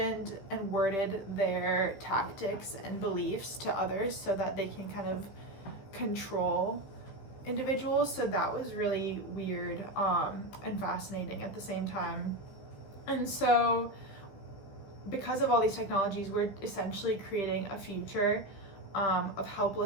and worded their tactics and beliefs to others so that they can kind of control individuals. So that was really weird and fascinating at the same time. And so because of all these technologies, we're essentially creating a future of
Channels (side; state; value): right; late; 15 ms